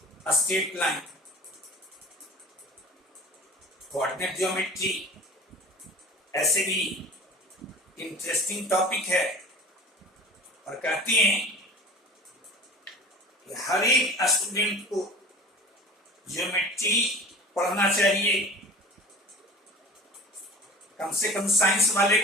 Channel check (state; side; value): normal; both; correlation 0.40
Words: स्ट्रेट लाइन कोऑर्डिनेट ज्योमेट्री। ऐसे भी इंटरेस्टिंग टॉपिक है और कहते हैं कि हर एक स्टूडेंट को ज्योमेट्री पढ़ना चाहिए, कम से कम साइंस वाले